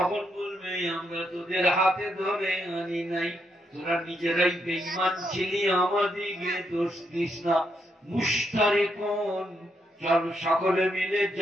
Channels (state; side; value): normal; both; correlation 0.78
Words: বলবে, আমরা তোদের হাতে ধরে আনি নাই, তোরা নিজেরাই বেঈমান ছিলি, আমাদিকে দোষ দিস না। মুশতারিকুন, চল সকলে মিলে